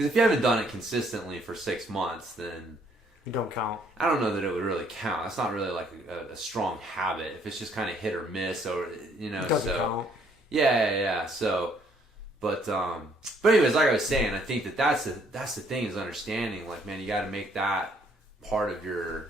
if you haven't done it consistently for 6 months, then you don't count. I don't know that it would really count. That's not really like a strong habit. If it's just kind of hit or miss, or it doesn't count. Yeah. So, but anyways, like I was saying, I think that's the thing is understanding. Like, man, you got to make that part of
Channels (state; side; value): normal; both; correlation 0.66